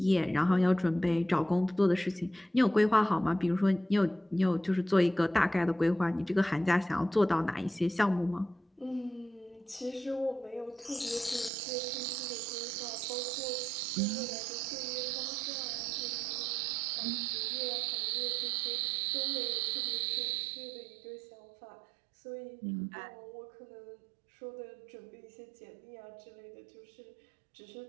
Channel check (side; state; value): left; drops out; at 11.5 s